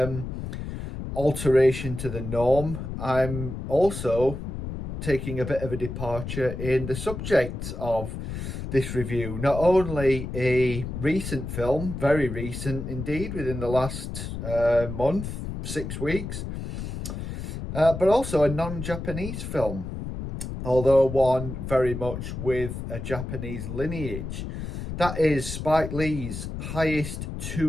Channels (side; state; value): left; noise; rumble, 6 dB below the sound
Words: alteration to the norm, I'm also taking a bit of a departure in the subject of this review. Not only a recent film, very recent indeed, within the last month, 6 weeks, but also a non-Japanese film, although one very much with a Japanese lineage. That is Spike Lee's